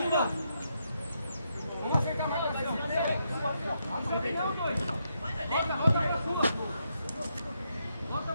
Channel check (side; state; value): both; inverted; correlation -0.80